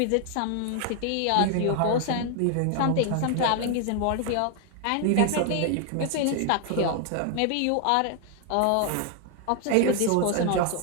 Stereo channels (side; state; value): both; different; correlation 0.00